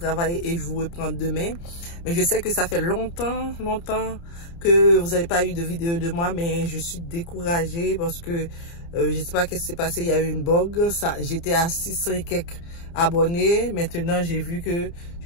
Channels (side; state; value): right; late; 29 ms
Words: et je vous reprends demain. Mais je sais que ça fait longtemps que vous n'avez pas eu de vidéo de moi, mais je suis découragée parce que je ne sais pas qu'est-ce qui s'est passé. Il y a eu une bug. J'étais à 600 et quelques abonnés. Maintenant, j'ai vu que